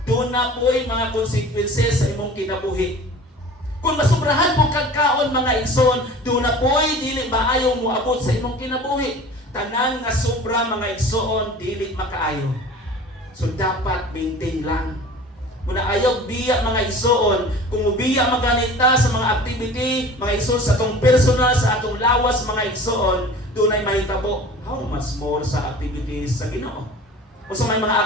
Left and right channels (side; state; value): both; normal; correlation 0.41